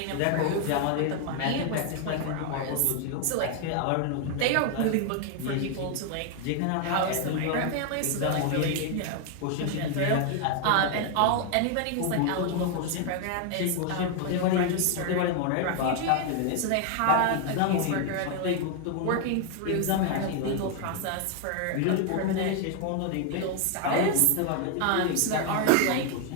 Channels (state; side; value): different; both; correlation 0.00